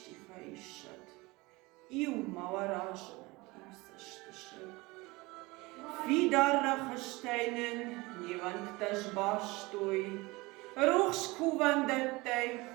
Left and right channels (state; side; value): quieter; left; 23.0 dB